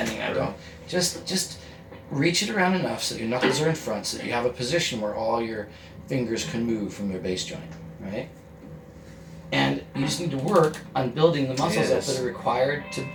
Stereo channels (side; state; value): both; identical; correlation 1.00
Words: that. Don't, just reach it around enough so that your knuckles are in front, so that you have a position where all your fingers can move from their base joint, right? And you just need to work on building the muscles up Yes. that are required to